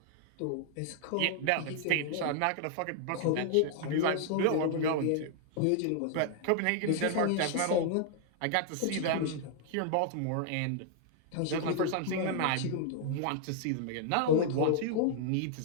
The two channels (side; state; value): both; different; correlation 0.00